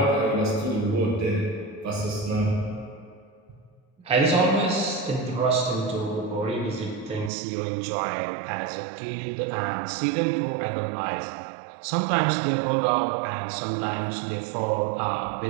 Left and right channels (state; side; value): drops out; left; at 7.3 s